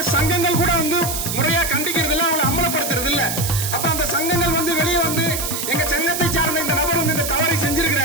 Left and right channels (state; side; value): noise; right; hiss, 3 dB below the sound